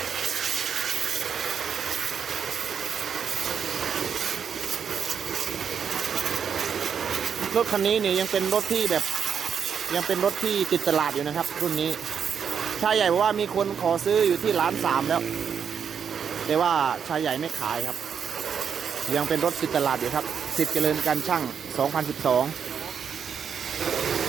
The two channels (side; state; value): left; quieter; 7.2 dB